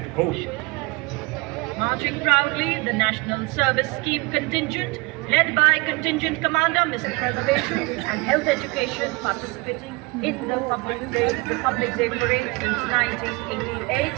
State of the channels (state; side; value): quieter; left; 26.4 dB